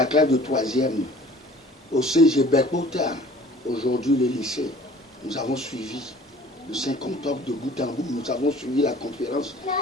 classe de 3e au CG Berkota, aujourd'hui le lycée. Nous avons suivi le 5 octobre de bout en bout. Nous avons suivi la conférence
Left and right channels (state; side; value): normal; both; correlation 0.50